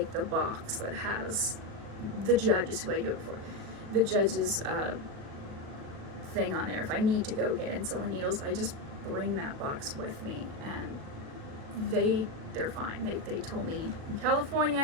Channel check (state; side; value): late; left; 37 ms